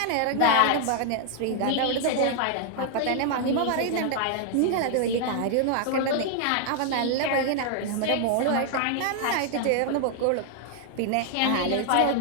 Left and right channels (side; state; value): both; different; correlation 0.00